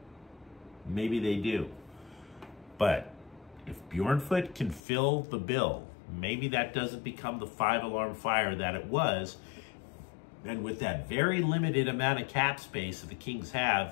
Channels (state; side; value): drops out; right; at 4.8 s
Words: Maybe they do. But if Bjornfoot can fill the bill, maybe that doesn't become the 5-alarm fire that it was. And with that very limited amount of cap space that the Kings